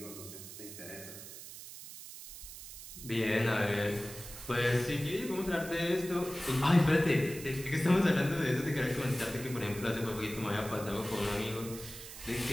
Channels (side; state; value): right; noise; hiss, 13 dB below the sound